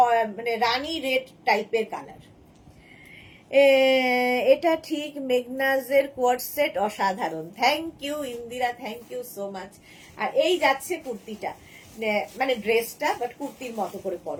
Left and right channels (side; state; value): both; identical; correlation 1.00